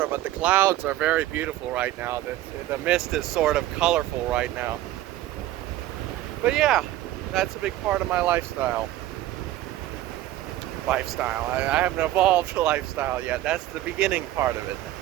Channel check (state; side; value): quieter; left; 14.5 dB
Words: but the clouds are very beautiful right now. The mist is sort of colorful right now. But yeah, that's a big part of my lifestyle. I haven't evolved the lifestyle yet. That's the beginning part of it.